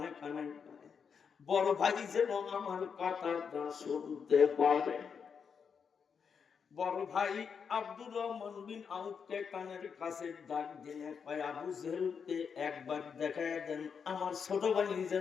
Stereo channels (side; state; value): right; quieter; 6.4 dB